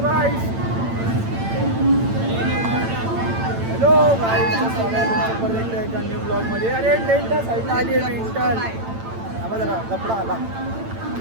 गाईस, हॅलो गाईस, स्वागत आहे एका न्यू ब्लॉगमध्ये. अरे टेंटा साईडला आली आहे मेंटल. हा जरा कपडा आला.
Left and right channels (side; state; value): left; late; 8.9 ms